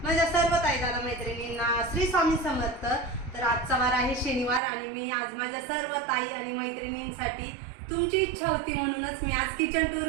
माझ्या सर्व ताई दादा मैत्रिणींना श्री स्वामी समर्थ. तर आजचा वार आहे शनिवार आणि मी आज माझ्या सर्व ताई आणि मैत्रिणींसाठी तुमची इच्छा होती म्हणूनच मी आज किचन टूर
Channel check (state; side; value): drops out; left; at 4.6 s